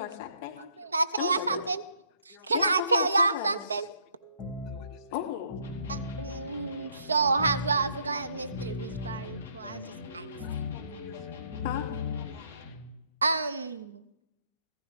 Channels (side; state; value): both; inverted; correlation -0.68